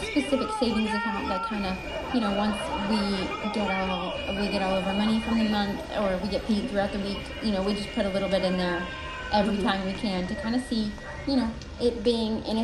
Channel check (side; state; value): both; identical; correlation 1.00